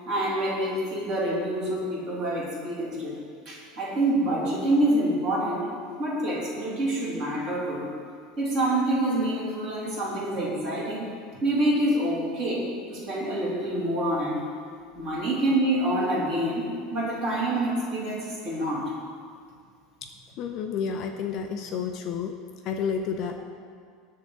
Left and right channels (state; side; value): normal; both; correlation 0.41